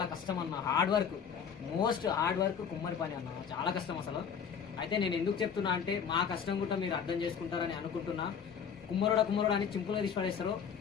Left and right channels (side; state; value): right; quieter; 7.2 dB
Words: కష్టం అన్న, hard work, most hard work కుమ్మరి పని అన్న, చాలా కష్టం అసలు. అయితే నేను ఎందుకు చెప్తున్నా అంటే మా కష్టం కూడా మీరు అర్థం చేసుకుంటారని అనుకుంటున్నా. కుమ్మరుడు అని చింపులో తీసి పడేస్తారు.